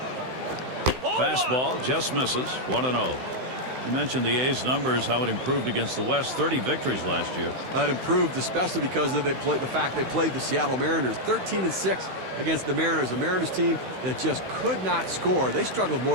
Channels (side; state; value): left; late; 16 ms